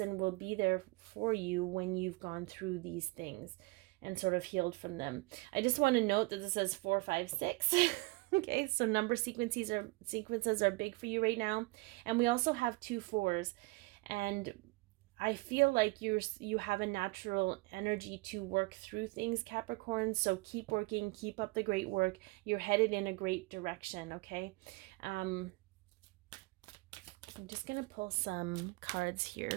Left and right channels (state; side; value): quieter; left; 24.2 dB